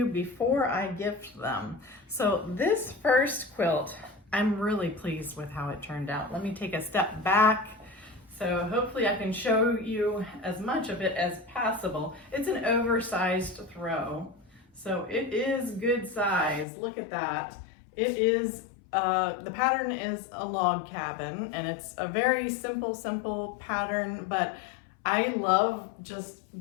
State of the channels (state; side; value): drops out; right; at 16.7 s